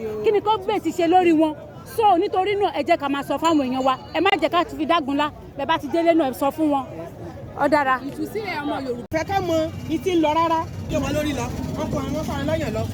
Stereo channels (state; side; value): identical; both; correlation 1.00